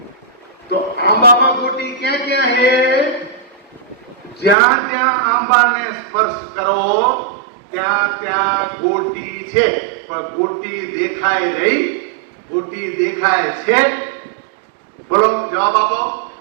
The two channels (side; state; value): left; drops out; at 4.5 s